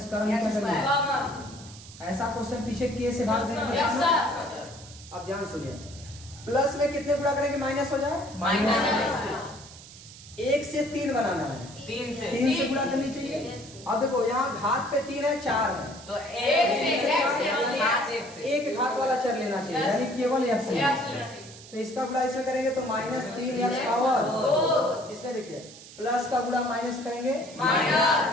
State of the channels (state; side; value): noise; right; hiss, 18 dB below the sound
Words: स्क्वायर में क्या करेंगे? ऐसा क्वेश्चन पीछे के से भाग देंगे। अब ध्यान सुनिए, प्लस में कितने गुणा करेंगे माइनस हो जाए? माइनस 1 से 3 बनाना है, 3 से गुणा करनी चाहिए। अब देखो यहाँ घात पे 3 है, 4 है, तो 1 एक घात वाला चर लेना चाहिए, यानी केवल x। तो इसका गुणा इसमें करेंगे तो -3x पावर। इसमें देखिए प्लस का गुणा माइनस करेंगे,